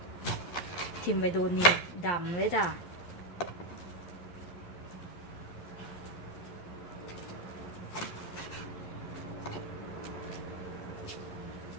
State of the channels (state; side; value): late; right; 11 ms